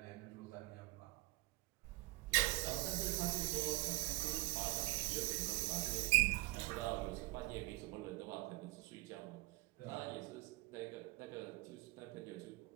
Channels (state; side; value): quieter; left; 20.3 dB